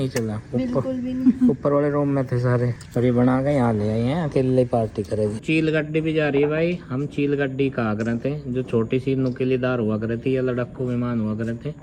चला? ऊपर वाले रूम में थे सारे, और ये बना के यहाँ ले आए हैं। अकेले पार्टी करेगी। चील गड्डी भी जा रही है भाई। हम चील गड्डी कहा करे थे, जो छोटी सी नुकीलीदार हुआ करे थी या लड़क्कू विमान हुआ करे थे,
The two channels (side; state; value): both; identical; correlation 1.00